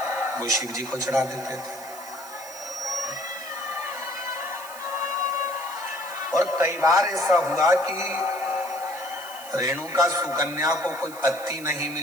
वो शिव जी को चढ़ा देते थे। और कई बार ऐसा हुआ कि रेणुका सुकन्या को कोई पत्ती नहीं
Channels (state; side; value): noise; right; hiss, 15 dB below the sound